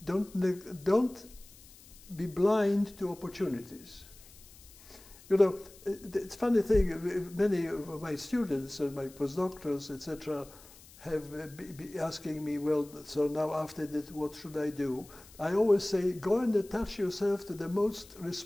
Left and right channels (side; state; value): left; noise; hiss, 22 dB below the sound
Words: don't be blind to opportunities. It's a funny thing, many of my students and my postdoctorals, etc., have been asking me, well, so now after that, what should I do? I always say, go and attach yourself to the most